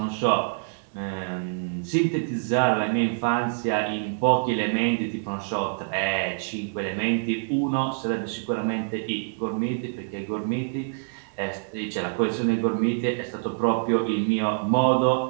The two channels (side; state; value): left; silent; digital silence